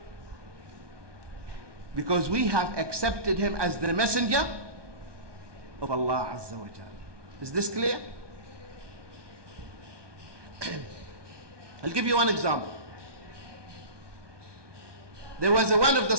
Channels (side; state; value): left; late; 1.2 ms